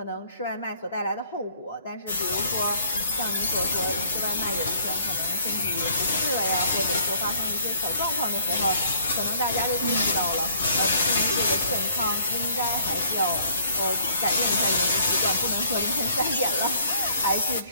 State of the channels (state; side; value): inverted; both; correlation -0.60